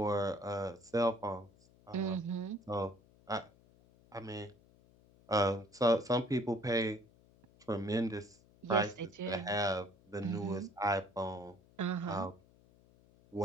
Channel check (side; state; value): left; noise; hum, 28 dB below the sound